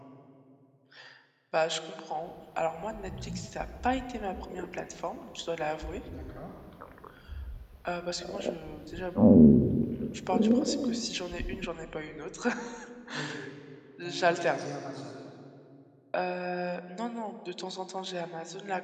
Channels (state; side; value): identical; both; correlation 1.00